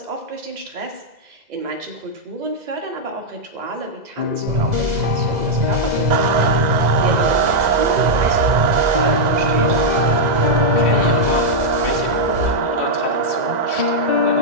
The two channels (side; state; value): left; late; 2.0 ms